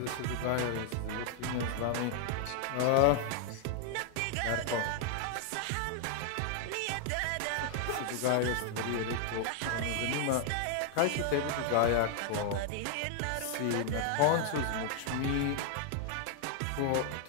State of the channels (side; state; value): both; different; correlation 0.00